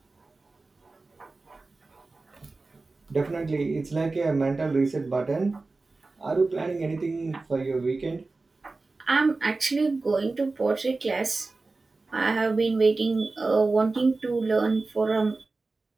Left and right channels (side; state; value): left; quieter; 3.6 dB